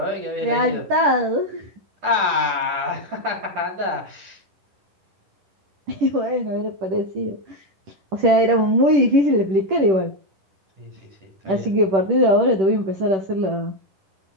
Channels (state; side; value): late; left; 10 ms